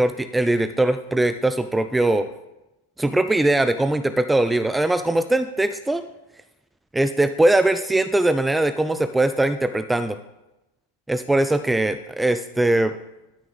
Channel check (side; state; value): both; normal; correlation 0.93